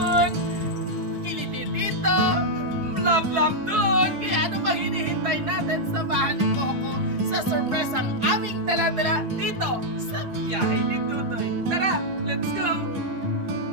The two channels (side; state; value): left; late; 4.7 ms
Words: kiliti dito, love dun. Kaya ano pang hinihintay natin? Samahan niyo po ako sa surprise ang aming dala-dala dito sa biyahe ni Tutoy. Tara, let's go!